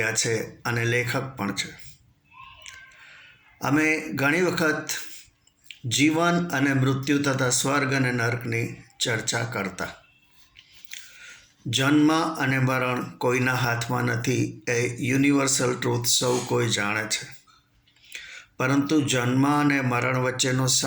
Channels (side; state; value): both; identical; correlation 1.00